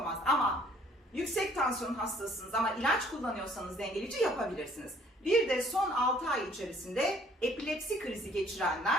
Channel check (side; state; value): both; normal; correlation 0.59